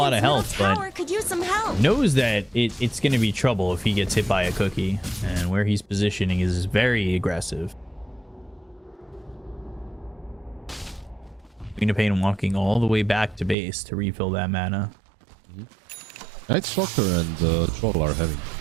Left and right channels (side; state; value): left; drops out; at 13.6 s